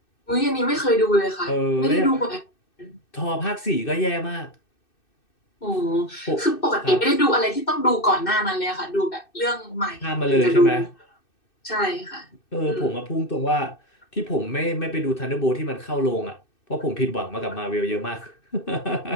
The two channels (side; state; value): right; late; 2.6 ms